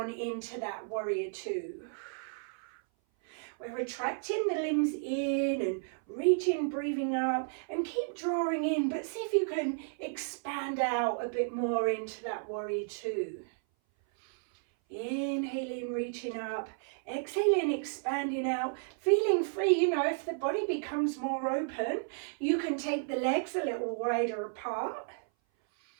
into that warrior two. We're retracting the limbs in and reaching, breathing up, and keep drawing in, but see if you can expand out a bit more into that warrior two. Inhaling, reaching up, exhaling, expanding out, feeling free. If the body becomes more open, you can take the legs a little wider apart.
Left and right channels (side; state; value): left; silent; 56 dB below the other